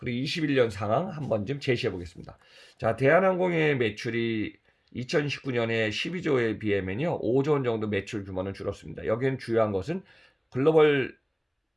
21년 상황 한번 좀 제시해 보겠습니다. 자, 대한항공의 매출이 2019년에 12조에 비하면요 5조 원 정도 매출 규모는 줄었습니다. 여기는 주요한 것은 글로벌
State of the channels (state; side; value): identical; both; correlation 1.00